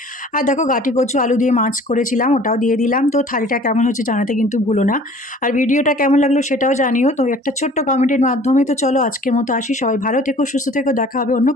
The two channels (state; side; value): normal; both; correlation 0.50